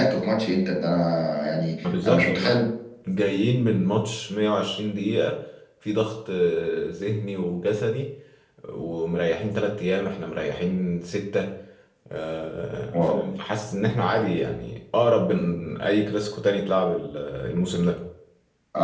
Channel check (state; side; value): identical; both; correlation 1.00